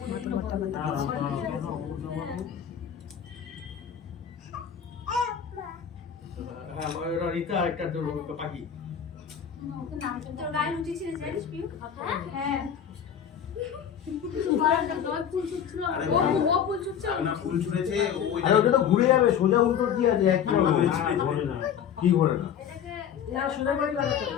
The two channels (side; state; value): right; quieter; 8.5 dB